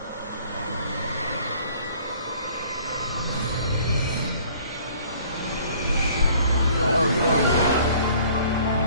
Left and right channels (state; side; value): inverted; both; correlation -0.54